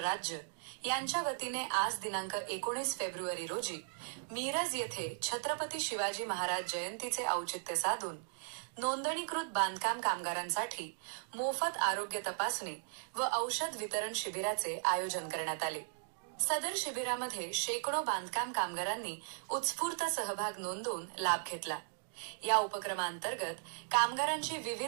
यांच्या वतीने आज दिनांक 19 फेब्रुवारी रोजी मिरज येथे छत्रपती शिवाजी महाराज जयंतीचे औचित्य साधून नोंदणीकृत बांधकाम कामगारांसाठी मोफत आरोग्य तपासणी व औषध वितरण शिबिराचे आयोजन करण्यात आले. सदर शिबिरामध्ये शेकडो बांधकाम कामगारांनी उत्स्फूर्त सहभाग नोंदवून लाभ घेतला. या उपक्रमांतर्गत कामगारांची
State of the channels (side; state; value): left; silent; digital silence